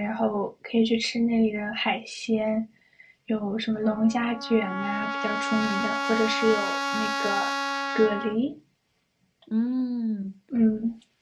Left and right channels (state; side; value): identical; both; correlation 1.00